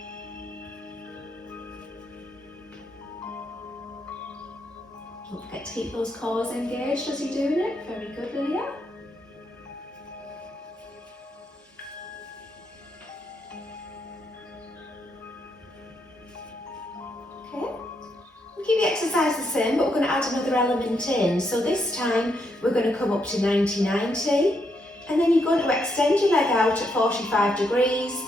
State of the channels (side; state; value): both; normal; correlation 0.78